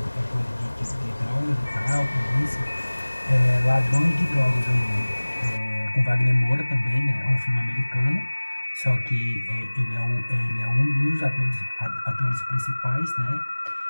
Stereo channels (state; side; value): inverted; both; correlation -1.00